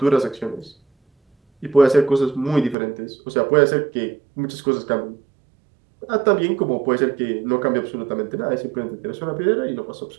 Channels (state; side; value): drops out; left; at 2.8 s